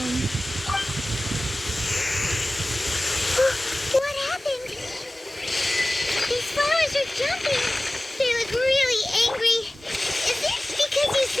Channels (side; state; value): both; normal; correlation 0.97